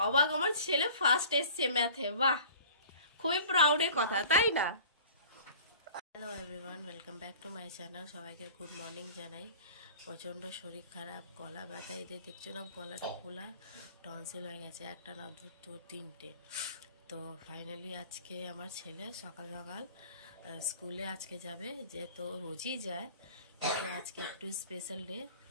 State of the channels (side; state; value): both; inverted; correlation -0.45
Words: অবাক, আমার ছেলে ফার্স্ট এসছে ম্যাথে। বাহ, খুবই প্রাউডের কথা, তাই না? Hello everyone, welcome back to my channel. সবাইকে গুড মর্নিং জানাই। প্রচণ্ড শরীর খারাপ, গলা ব্যথা, এদের দেখছো না গলাটা ফোলা, টনসিল হয়ে গেছে, একটা না দুটো তিনটে। তো ফাইনালি আজকে আমার ছেলে সকাল সকাল স্কুলে আজকে যাবে, যে তো রোজই যায়, কিন্তু আজকে একটু স্পেশাল ডে।